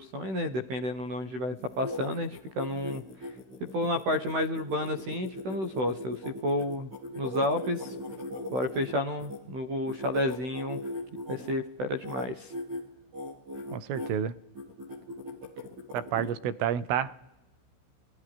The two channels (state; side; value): late; left; 16 ms